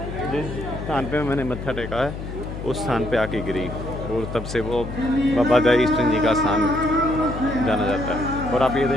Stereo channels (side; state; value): left; noise; hum, 8 dB below the sound